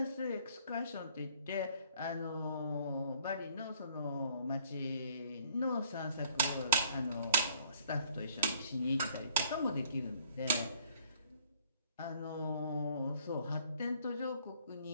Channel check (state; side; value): inverted; both; correlation -0.61